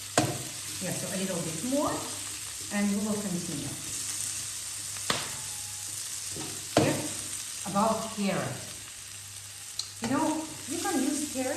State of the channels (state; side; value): identical; both; correlation 1.00